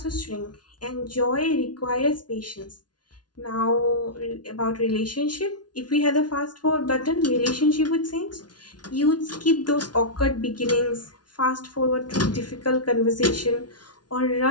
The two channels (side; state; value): right; late; 0.70 ms